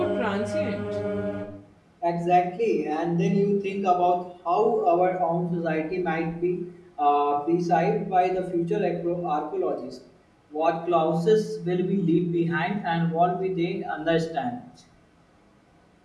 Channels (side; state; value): both; identical; correlation 1.00